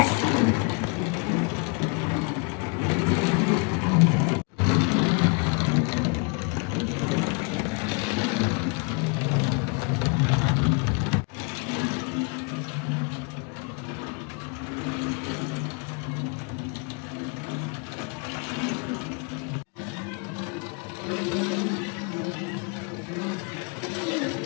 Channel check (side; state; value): right; quieter; 33.3 dB